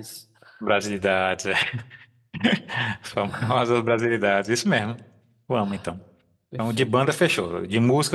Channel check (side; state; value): both; identical; correlation 1.00